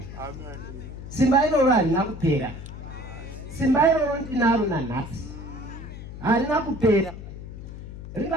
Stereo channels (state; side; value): noise; left; hum, 11 dB below the sound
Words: Simba iroro harina kupera. Simba iroro ndinaro nanhasi. Harina kupera.